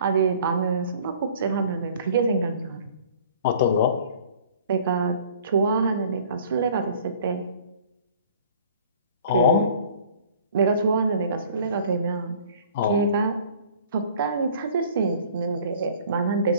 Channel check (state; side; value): inverted; both; correlation -0.50